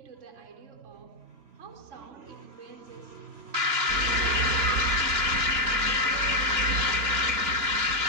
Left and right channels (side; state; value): left; late; 3.0 ms